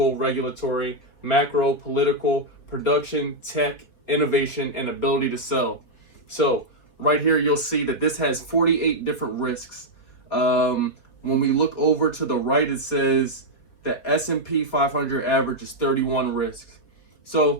regulatory, macro, political, production, tech, innovation, and ability to sell. So right here, you'll see that this has 48 different risks. When we look over to the right, it says the S&P 500 average is 31 risks.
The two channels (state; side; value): late; right; 4.1 ms